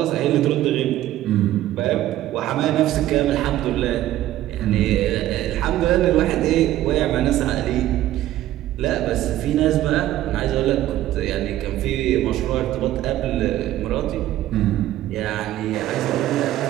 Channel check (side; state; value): left; quieter; 14.0 dB